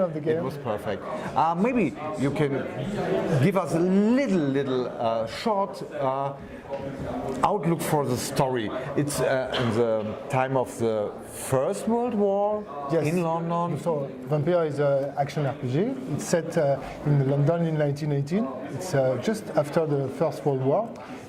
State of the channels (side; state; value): both; identical; correlation 1.00